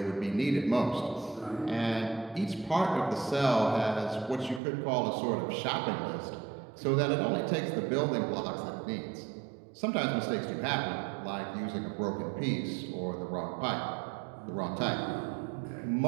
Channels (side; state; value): left; drops out; at 4.6 s